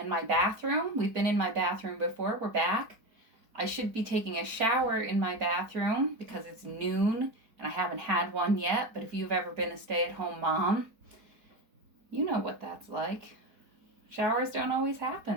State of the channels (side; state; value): left; late; 4.4 ms